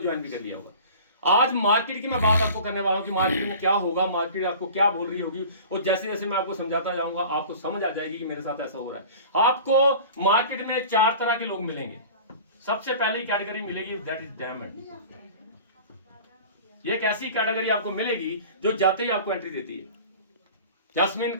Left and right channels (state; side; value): inverted; both; correlation -0.41